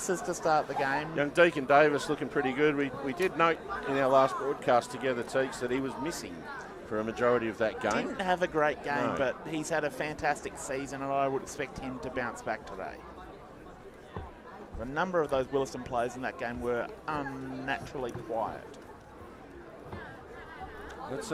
to start the game. Young Deacon Davis looking pretty good. We did note in our last broadcast together, Teeks, that he was missing for a majority of that game. Didn't have a great game, No. but he's had a fantastic season, and I would expect him to bounce back today. A number of those Willaston players in that game were unnaturally quiet. That's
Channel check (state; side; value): identical; both; correlation 1.00